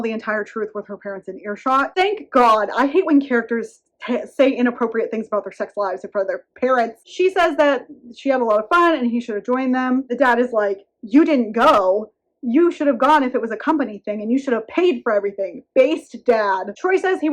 the entire truth with her parents in earshot. Thank God. I hate when characters say inappropriate things about their sex lives in front of their parents. She says that she had a lot of fun and he should have joined them. The dad is like, you didn't go. You should have gone if it was a company thing, and you should have paid for everything. Based dad. Troy says he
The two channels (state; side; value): identical; both; correlation 1.00